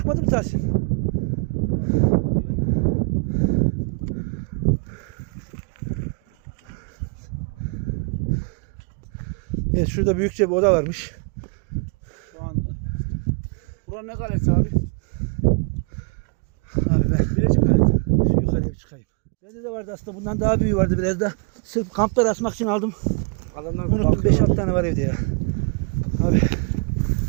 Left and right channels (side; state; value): left; quieter; 33.9 dB